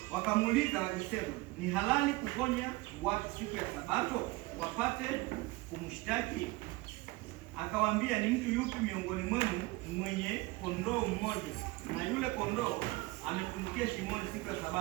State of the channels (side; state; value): left; quieter; 22.0 dB